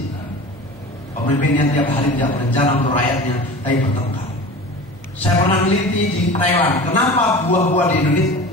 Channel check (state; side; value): noise; right; hum, 23 dB below the sound